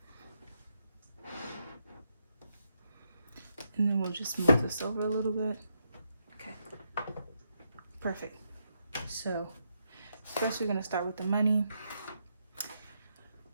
And then we'll just move this over a little bit. Okay, perfect. So first we're gonna start with the money.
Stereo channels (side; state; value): both; inverted; correlation -0.80